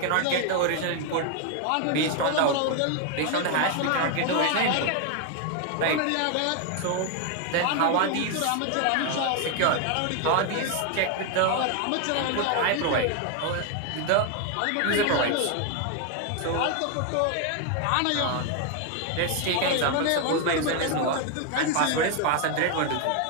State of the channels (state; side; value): different; both; correlation 0.01